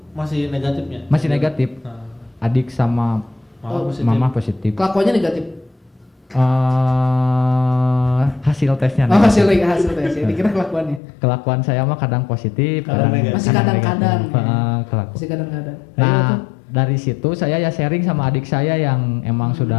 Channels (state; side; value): drops out; right; at 11.0 s